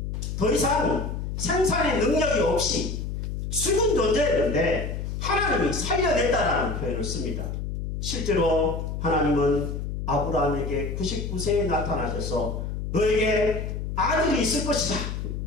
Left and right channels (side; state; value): left; noise; hum, 4 dB below the sound